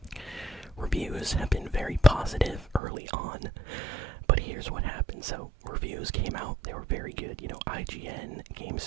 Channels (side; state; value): left; drops out; at 2.8 s